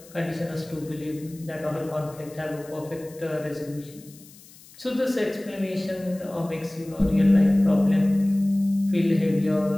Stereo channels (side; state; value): left; noise; hiss, 23 dB below the sound